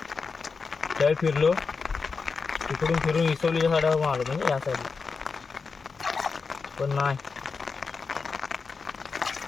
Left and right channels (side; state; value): right; quieter; 4.9 dB